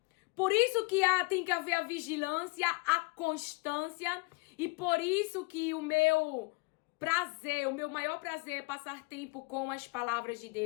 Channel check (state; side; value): quieter; right; 28.0 dB